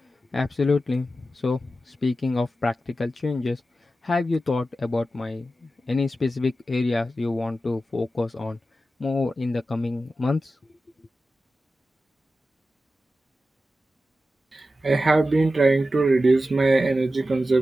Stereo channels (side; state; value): both; normal; correlation 0.92